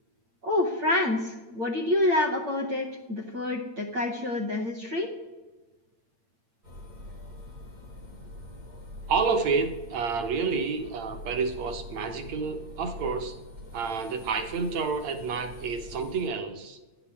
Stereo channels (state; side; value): late; left; 8.7 ms